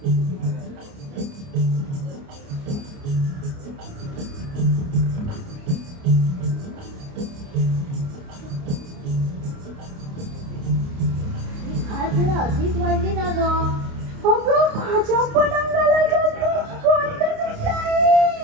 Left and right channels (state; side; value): late; left; 29 ms